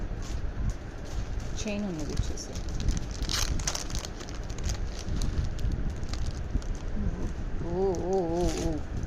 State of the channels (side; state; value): both; identical; correlation 1.00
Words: చైన్ ఉన్నది వచ్చేసి.